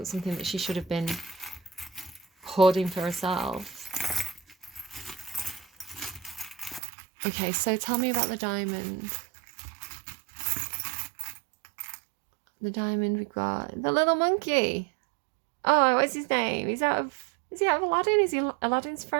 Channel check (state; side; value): drops out; left; at 6.8 s